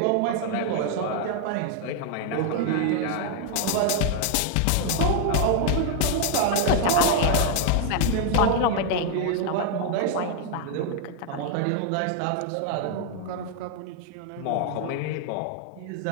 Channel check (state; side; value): different; both; correlation 0.00